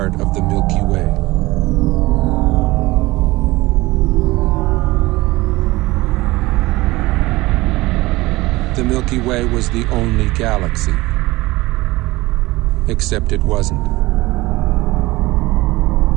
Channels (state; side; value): quieter; left; 20.1 dB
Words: of the Milky Way. The Milky Way was the only galaxy, except it wasn't.